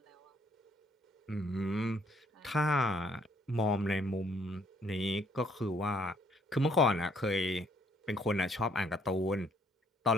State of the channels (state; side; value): normal; both; correlation 0.66